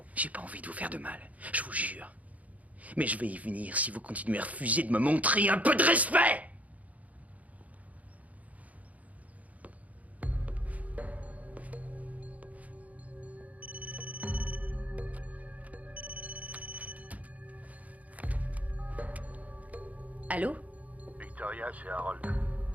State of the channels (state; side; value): late; left; 0.072 ms